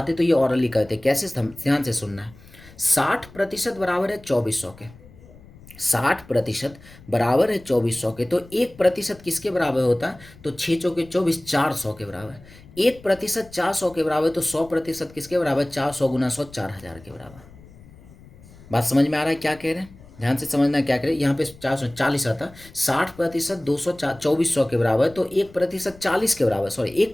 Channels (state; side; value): noise; left; rumble, 22 dB below the sound